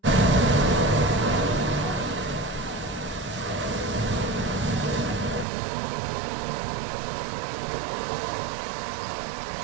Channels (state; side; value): drops out; left; at 5.5 s